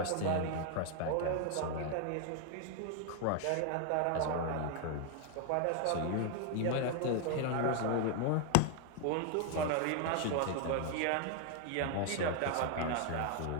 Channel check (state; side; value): different; both; correlation 0.00